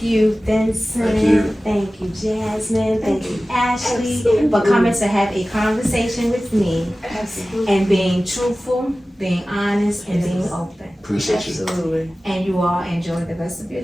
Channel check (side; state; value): both; normal; correlation 0.96